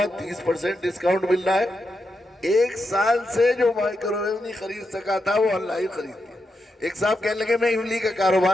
30% ڈسکاؤنٹ مل رہا ہے۔ 1 سال سے جو مائکرو ویو نہیں خرید سکا تھا وہ آن لائن خرید لیا۔ ایک صاحب کہنے لگے میں املی کا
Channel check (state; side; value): normal; both; correlation 0.85